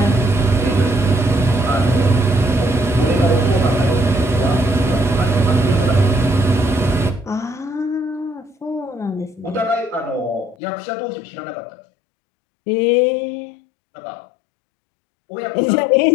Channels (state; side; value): drops out; right; at 10.6 s